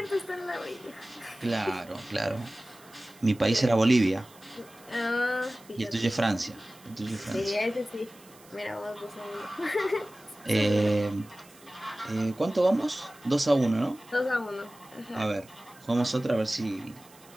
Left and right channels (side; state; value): right; noise; hiss, 24 dB below the sound